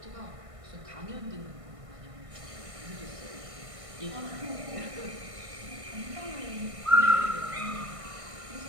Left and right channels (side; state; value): left; late; 1.5 ms